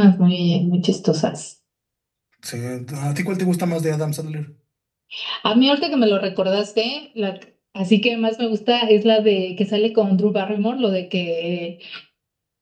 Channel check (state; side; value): identical; both; correlation 1.00